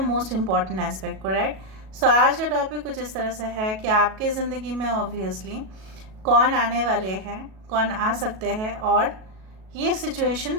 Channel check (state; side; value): late; left; 37 ms